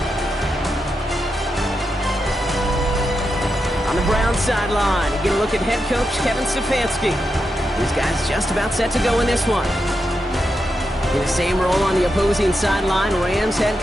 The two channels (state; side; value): normal; both; correlation 0.86